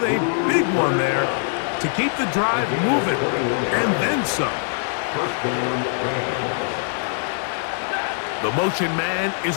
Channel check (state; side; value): silent; right; 55 dB below the other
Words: a big one there to keep the drive moving. And then some. The motion man is